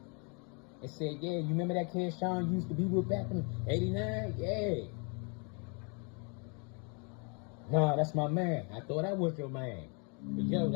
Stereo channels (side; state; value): right; quieter; 35.6 dB